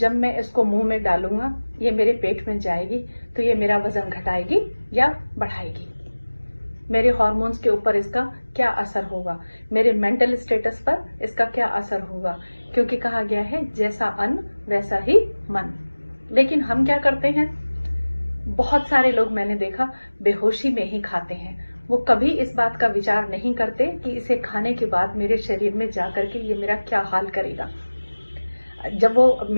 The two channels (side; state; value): both; inverted; correlation -1.00